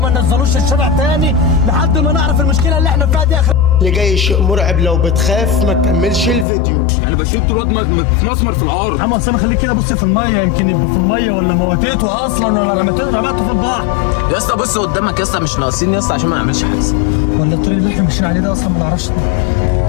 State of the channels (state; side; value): drops out; right; at 6.5 s